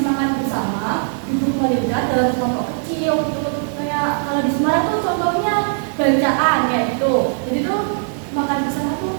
makan bersama, duduk melihat dalam kelompok kecil gitu. Kayak kalau di Semarang tuh contohnya bacaan kayak gitu. Jadi tuh makan bersama tuh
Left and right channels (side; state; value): left; silent; digital silence